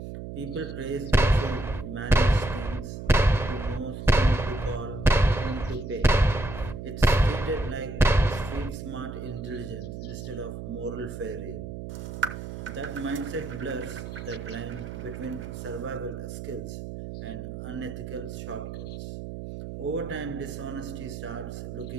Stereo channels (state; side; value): noise; right; hum, 8 dB below the sound